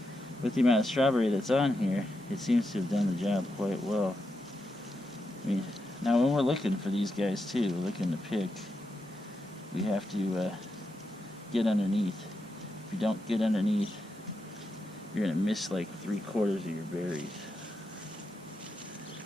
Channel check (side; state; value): both; normal; correlation 0.86